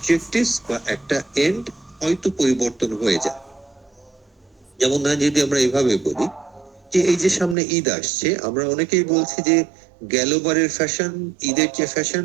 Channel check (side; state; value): left; drops out; at 7.6 s